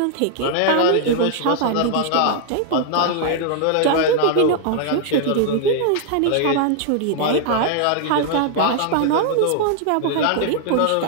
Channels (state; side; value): different; both; correlation 0.00